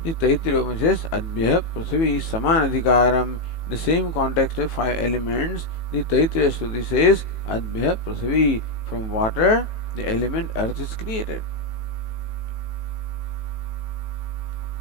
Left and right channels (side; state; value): right; late; 18 ms